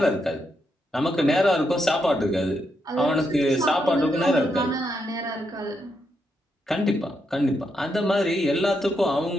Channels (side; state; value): both; normal; correlation 0.81